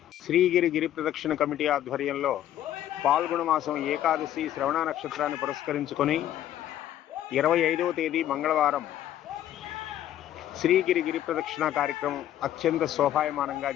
శ్రీగిరి గిరి ప్రదక్షిణ కమిటీ ఆధ్వర్యంలో పాల్గొన మాసం ఏకాదశి శ్రవణ నక్షత్రాన్ని పురస్కరించుకొని 25వ తేదీ మంగళవారం శ్రీగిరి గిరి ప్రదక్షిణ కార్యక్రమం అత్యంత శోభాయమానంగా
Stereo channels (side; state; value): right; quieter; 12.0 dB